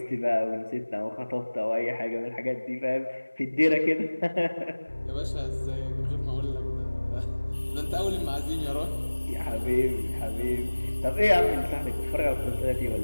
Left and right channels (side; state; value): both; inverted; correlation -1.00